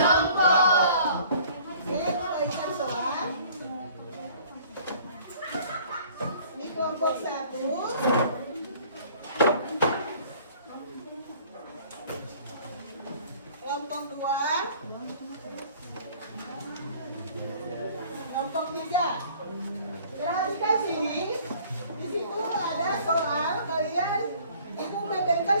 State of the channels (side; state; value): both; inverted; correlation -0.53